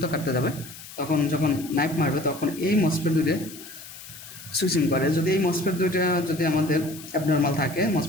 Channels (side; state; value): left; noise; hiss, 15 dB below the sound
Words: কাটতে যাবে, তখন যখন নাইফ মারবে তখন এই মসফেট দুইটা সুইচিং করে। যদি এই মসফেট দুইটা যদি আমাদের অ্যাবনর্মাল থাকে,